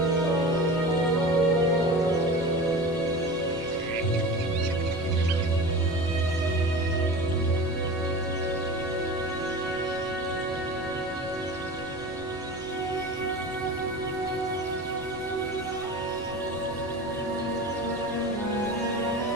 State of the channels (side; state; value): both; normal; correlation 0.33